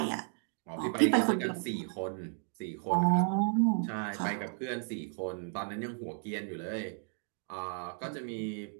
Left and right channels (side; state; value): left; silent; 55 dB below the other